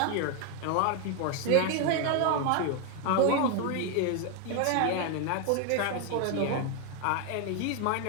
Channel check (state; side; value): different; both; correlation 0.01